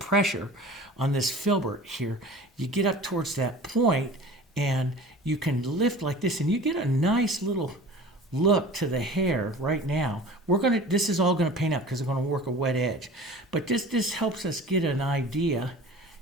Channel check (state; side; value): normal; both; correlation 0.41